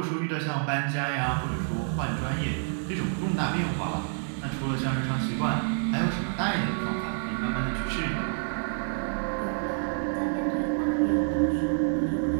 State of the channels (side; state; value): left; silent; 59 dB below the other